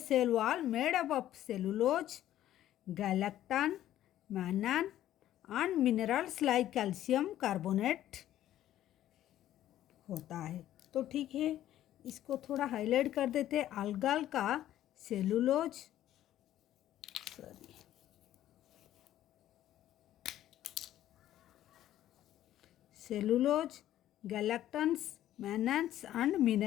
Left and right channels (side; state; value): right; quieter; 12.7 dB